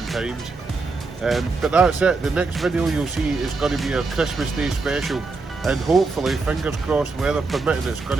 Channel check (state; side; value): quieter; left; 3.9 dB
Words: times. But that's it, the next video you'll see is going to be our Christmas Day special, and hopefully, fingers crossed, weather permitting, it's going